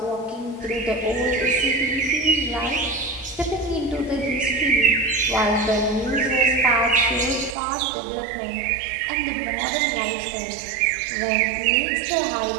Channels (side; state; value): left; drops out; at 7.6 s